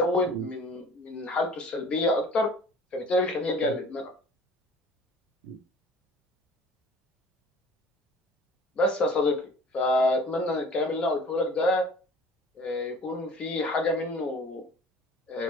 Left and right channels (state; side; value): normal; both; correlation 0.47